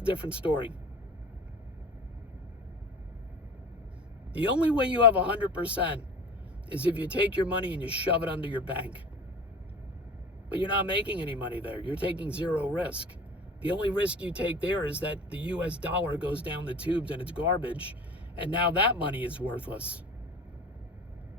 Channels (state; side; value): normal; both; correlation 0.38